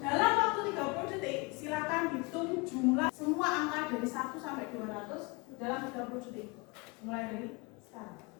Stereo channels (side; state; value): right; quieter; 27.9 dB